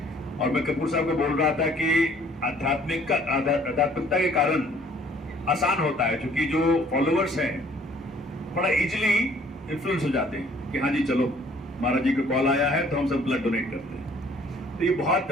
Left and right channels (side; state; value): both; normal; correlation 0.58